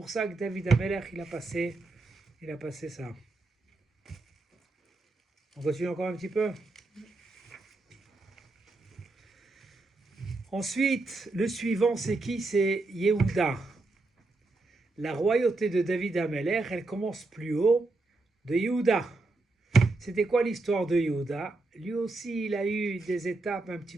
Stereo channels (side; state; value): left; quieter; 3.2 dB